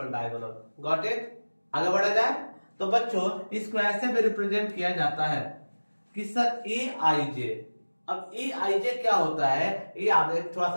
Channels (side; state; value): both; inverted; correlation -1.00